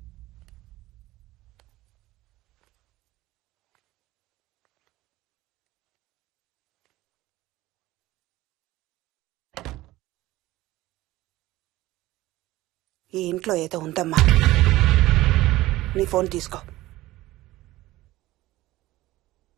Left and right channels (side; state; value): left; quieter; 17.3 dB